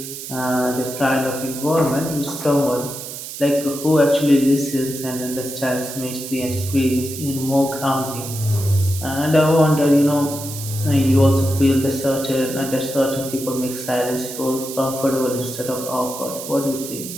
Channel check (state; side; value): noise; right; hiss, 10 dB below the sound